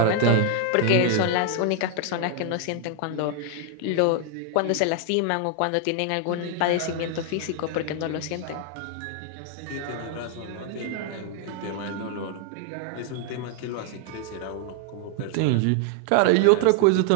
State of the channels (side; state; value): both; different; correlation 0.00